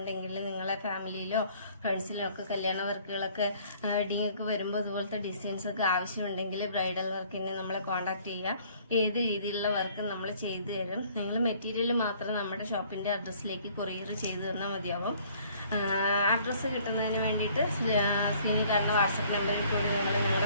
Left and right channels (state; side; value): inverted; both; correlation -0.58